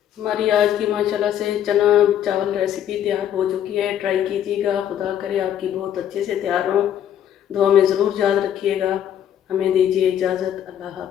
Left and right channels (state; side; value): quieter; right; 10.2 dB